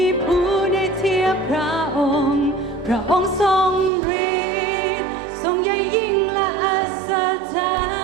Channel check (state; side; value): drops out; left; at 3.9 s